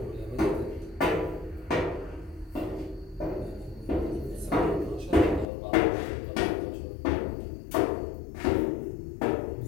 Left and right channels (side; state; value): right; drops out; at 5.5 s